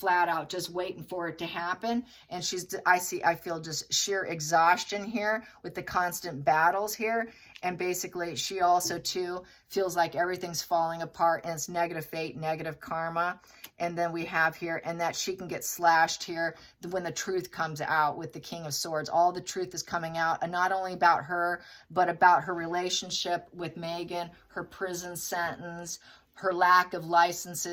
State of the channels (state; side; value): identical; both; correlation 1.00